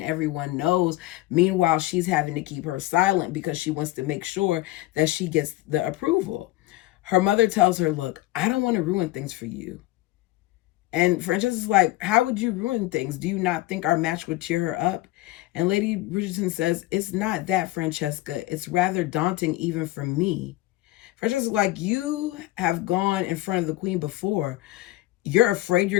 everyone knows. Meanwhile, she's having to keep her silent because she wants to make sure that she gets the approval. Her mother tells her, look, I don't want to ruin things for you. And Francesca's like, how would you ruin things? Do you not think our match would cheer her up? And Lady Bridgerton says, it's not that, Francesca. It's rather daunting even for me. Francesca's like, you have gone in front of the queen before. You're afraid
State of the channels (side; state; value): right; quieter; 17.4 dB